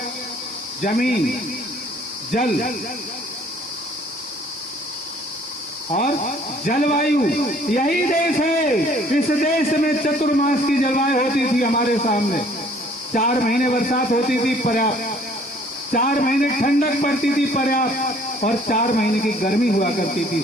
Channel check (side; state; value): both; normal; correlation 0.58